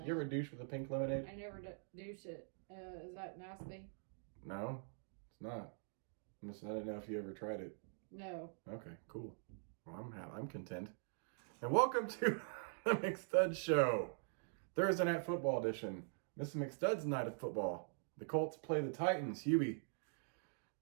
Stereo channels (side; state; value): left; silent; digital silence